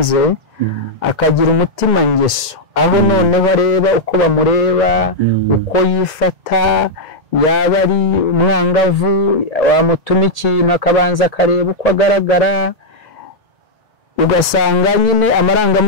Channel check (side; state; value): both; normal; correlation -0.05